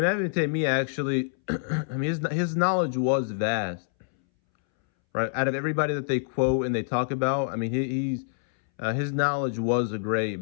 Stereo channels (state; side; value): silent; right; 61 dB below the other